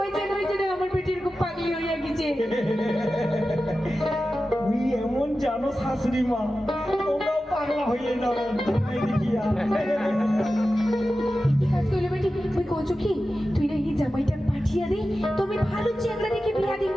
ওই জন্য আমার বেটি এরকম পাগলি হইয়া গেছে তুই এমন জানো শাশুড়ি মা তোমরাও পাগলা হয়ে যাবে দেখিয়া কি কাজ কইলে বেটি তুই কইছো কি তুই না এই জামাইটা পাঠিয়ে দে তুমি ভালো চেংড়া দেখে বিয়া দিন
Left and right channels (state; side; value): normal; both; correlation 0.93